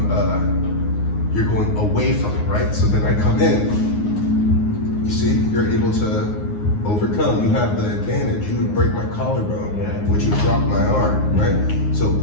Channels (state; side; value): late; right; 9.6 ms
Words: you're going away from it, right? So then I come in, you see, you're able to overcome. You have the advantage. You would break my collarbone, which would drop my arm, right? So